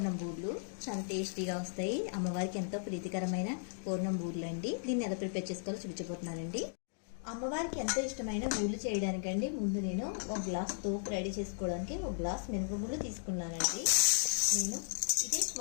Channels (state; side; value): silent; right; digital silence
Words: బూర్లు. చాలా టేస్టీగా వస్తాయి. అమ్మవారికి ఎంతో ప్రీతికరమైన పూర్ణం బూర్లు అండి. దీన్ని ఎలా ప్రిపేర్ చేసుకోవాలో చూపించబోతున్నానండి. అమ్మవారికి ఎంతో ఇష్టమైన బూర్లు చేయడానికండి ముందు నేను 1 గ్లాస్ తోపు రెడీ చేసుకోవడానికి 1 గ్లాస్ మినపగుళ్ళు తీసుకున్నానండి. నేను